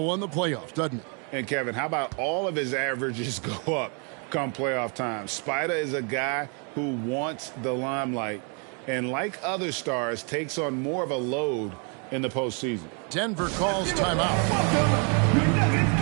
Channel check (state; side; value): quieter; left; 37.5 dB